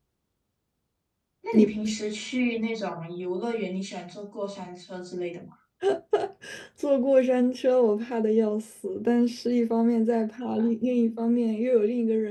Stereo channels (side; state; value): both; identical; correlation 1.00